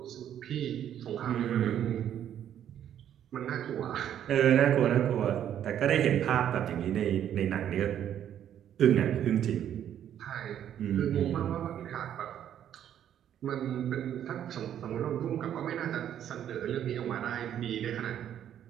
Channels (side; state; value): left; quieter; 10.2 dB